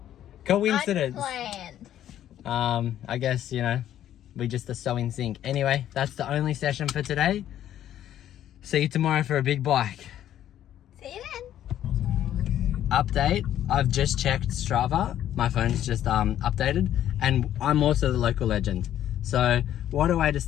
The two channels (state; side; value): quieter; right; 11.5 dB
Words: Coincidence. Unplanned. I guess, we just are so in sync. Anyway, that's the only session for today. See you tomorrow for a big bike. See you then. Update, I've just checked Strava. My phone's just updated, and I'm also the local legend. So what a way to